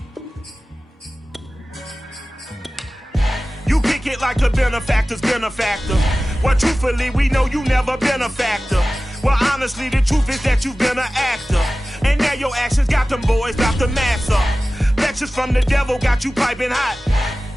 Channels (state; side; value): normal; both; correlation 0.96